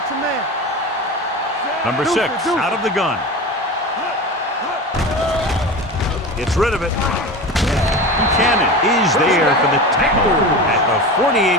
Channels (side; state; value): both; normal; correlation 0.28